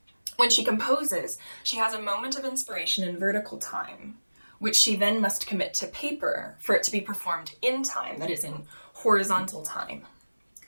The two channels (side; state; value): both; inverted; correlation -1.00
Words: When she composes, she has a moment of inspiration in vertical time, which she then must commit to paper for it to be performed in time, that is, in horizontal time.